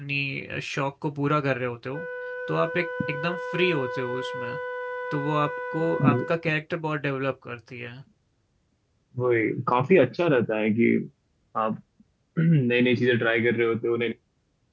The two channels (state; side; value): identical; both; correlation 1.00